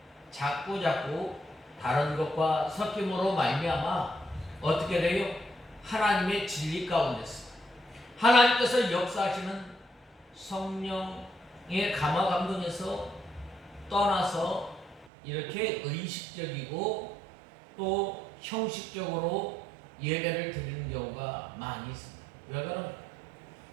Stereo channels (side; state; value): left; drops out; at 15.1 s